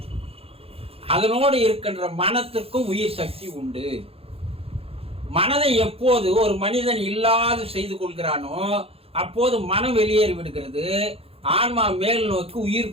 அதனோடு இருக்கின்ற மனத்திற்கும் உயிர் சக்தி உண்டு. மனதை எப்போது ஒரு மனிதன் இல்லாது செய்து கொள்கிறானோ அப்போது மனம் வெளியேறி விடுகிறது. ஆன்மா மேல் நோக்கி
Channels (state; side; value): late; left; 0.28 ms